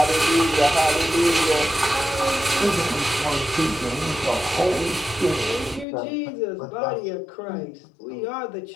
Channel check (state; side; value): drops out; right; at 5.9 s